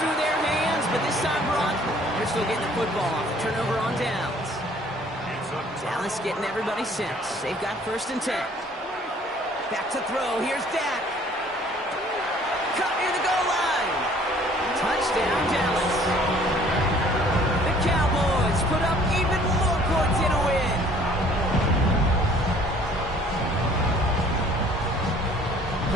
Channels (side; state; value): both; normal; correlation 0.56